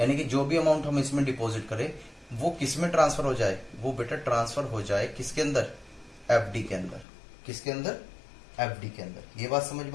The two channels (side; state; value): right; drops out; at 7.1 s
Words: कि जो भी अमाउंट हम इसमें डिपॉजिट करें, वो किस में ट्रांसफर हो जाए, वो बेटा ट्रांसफर हो जाए किसके अंदर, एफडी के अंदर। किसके अंदर, एफडी के अंदर। ये बात समझ में